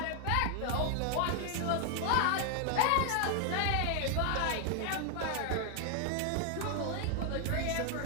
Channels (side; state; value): both; different; correlation 0.00